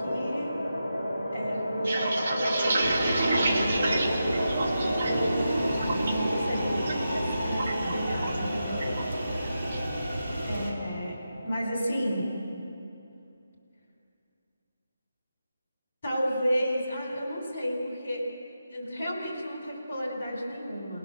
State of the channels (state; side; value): inverted; both; correlation -0.88